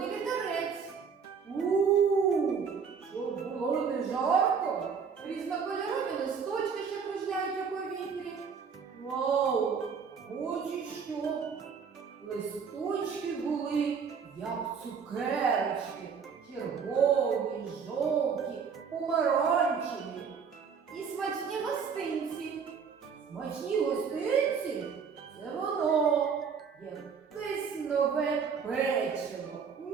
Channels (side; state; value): left; quieter; 6.2 dB